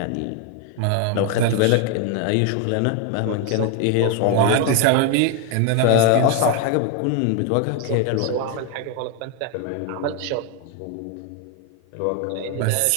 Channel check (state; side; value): different; both; correlation 0.01